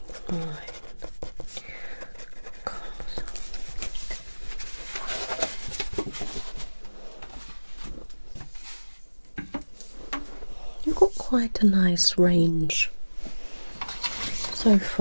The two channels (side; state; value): both; inverted; correlation -1.00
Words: white, colours. You've got quite a nice range so